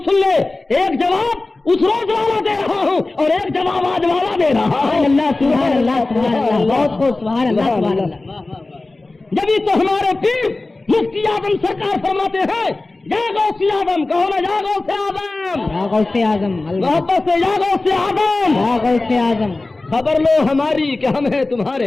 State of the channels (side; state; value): right; quieter; 3.1 dB